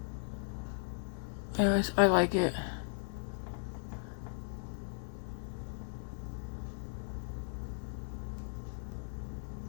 I like it.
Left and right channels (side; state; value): right; silent; 53 dB below the other